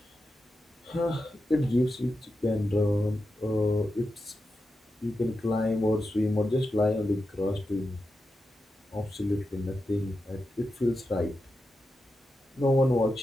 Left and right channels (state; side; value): normal; both; correlation 0.89